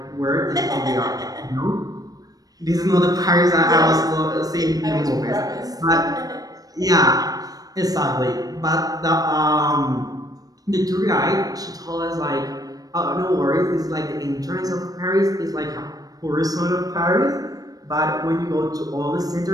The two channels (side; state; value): left; late; 0.18 ms